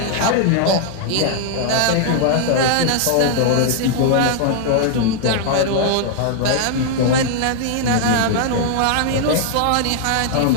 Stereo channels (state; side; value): different; both; correlation 0.00